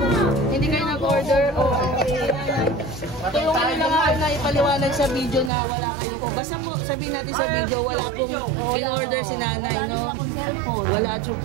Hindi kayo nag-order? Tulungan nyo lang ako na ipaliwanag sa video na wala kayo po. Basta po, sabihin natin sa video, wala pong in-order si nanay, no? Wala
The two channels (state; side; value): drops out; left; at 5.5 s